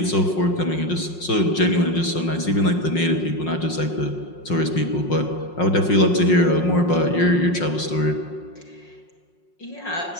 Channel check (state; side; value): late; right; 5.5 ms